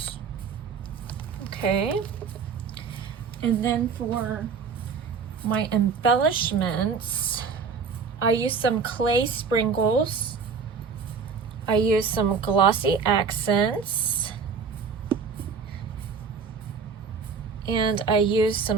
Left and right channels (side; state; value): left; quieter; 5.5 dB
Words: Okay, and then for my embellishments, I used some clay sprinkles. I used some glossy accents. And I used